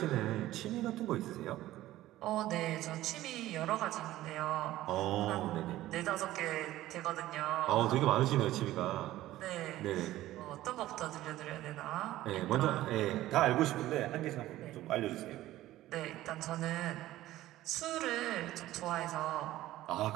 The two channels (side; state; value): left; quieter; 15.3 dB